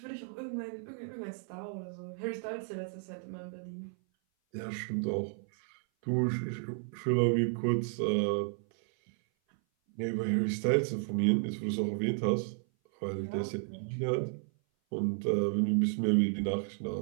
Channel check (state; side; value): silent; left; 56 dB below the other